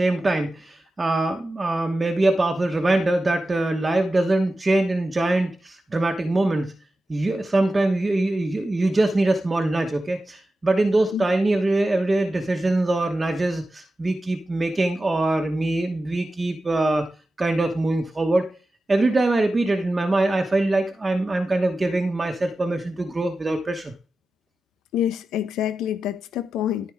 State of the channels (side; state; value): both; normal; correlation 0.93